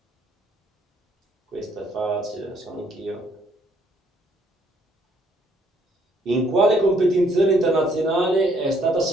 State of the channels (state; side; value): normal; both; correlation 0.67